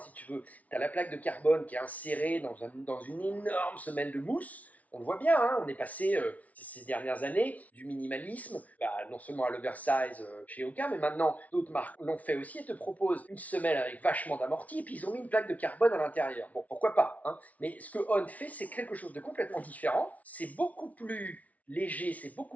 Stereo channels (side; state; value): right; late; 0.070 ms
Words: tu veux, tu as la plaque de carbone qui est insérée dans une énorme semelle de mousse. On le voit bien, hein, on est passé ces dernières années du minimalisme, non seulement à l'oversize chez Hoka, mais maintenant d'autres marques l'ont fait aussi et te proposent une semelle avec vachement d'amorti et puis ils ont mis une plaque de carbone à l'intérieur. Bon, pourquoi pas, hein, mais ce que On fait, c'est quelque chose de complètement différent. C'est beaucoup plus léger, c'est